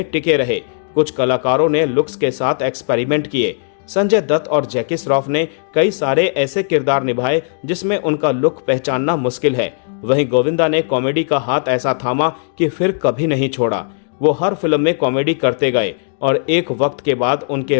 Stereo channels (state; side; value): silent; right; digital silence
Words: टिके रहे। कुछ कलाकारों ने लुक्स के साथ एक्सपेरिमेंट किए। संजय दत्त और जैकी श्रॉफ ने कई सारे ऐसे किरदार निभाए जिसमें उनका लुक पहचानना मुश्किल है। वहीं गोविंदा ने कॉमेडी का हाथ ऐसा थामा कि फिर कभी नहीं छोड़ा। वो हर फिल्म में कॉमेडी करते गए और एक वक्त के बाद